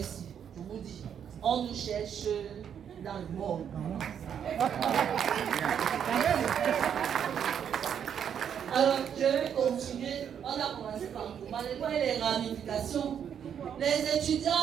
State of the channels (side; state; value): left; quieter; 8.4 dB